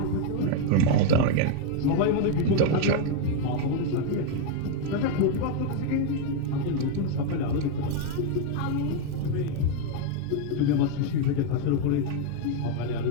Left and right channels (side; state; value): both; different; correlation 0.01